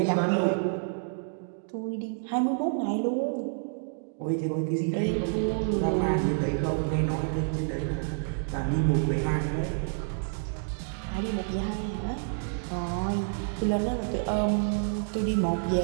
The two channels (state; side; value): silent; left; digital silence